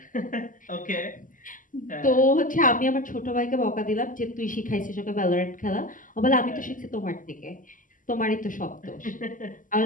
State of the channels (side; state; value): right; late; 0.38 ms